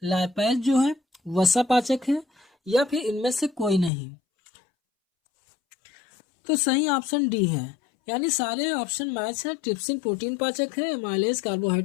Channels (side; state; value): right; drops out; at 3.9 s